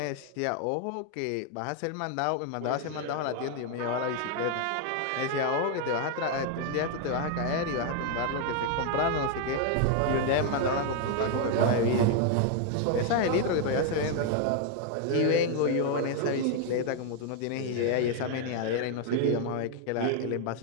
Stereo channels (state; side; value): different; both; correlation 0.00